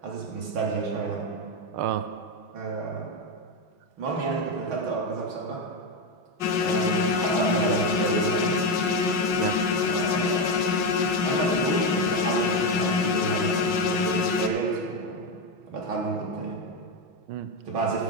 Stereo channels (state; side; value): late; left; 5.7 ms